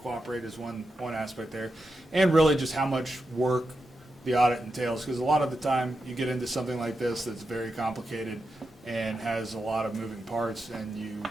is one aspect there, and really just how much work the audit entails, because a lot of the time you get into something like this that's very complicated and has a lot of moving parts, and you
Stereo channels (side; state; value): both; normal; correlation 0.88